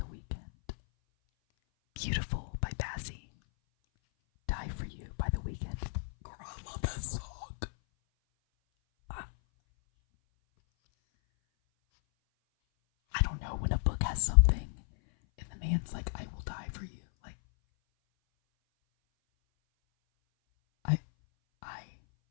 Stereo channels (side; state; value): right; silent; 55 dB below the other